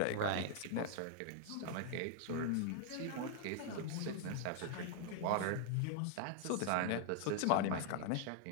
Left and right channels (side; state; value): both; different; correlation 0.00